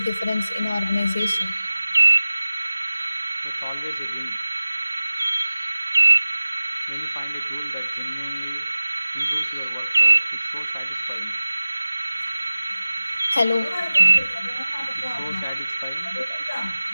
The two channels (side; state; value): both; inverted; correlation -0.97